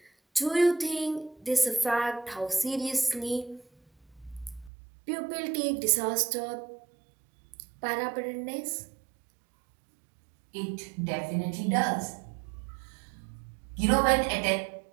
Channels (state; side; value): drops out; left; at 4.7 s